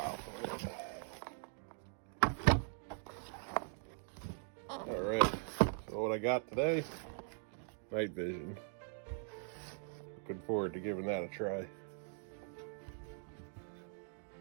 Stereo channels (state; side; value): silent; left; 50 dB below the other